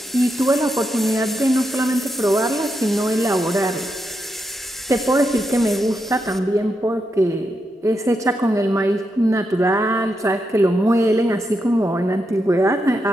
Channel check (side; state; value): both; normal; correlation 0.84